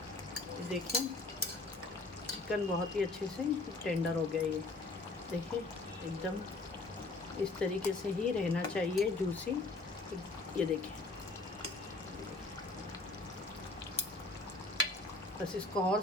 देखें चिकन बहुत ही अच्छे से टेंडर हो गया। ये देखिए एकदम इस तरीके से ही रहना चाहिए, जूसी। ये देखें, बस इसको और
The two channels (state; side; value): quieter; right; 3.2 dB